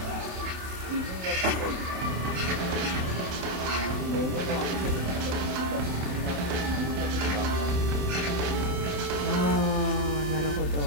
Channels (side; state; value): left; late; 27 ms